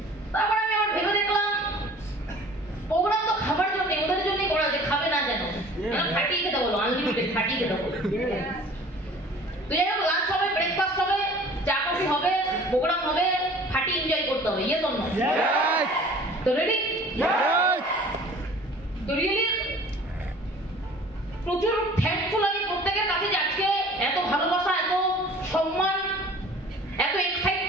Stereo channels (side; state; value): both; normal; correlation 0.47